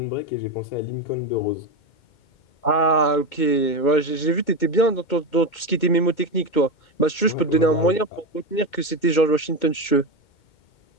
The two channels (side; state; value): right; late; 2.2 ms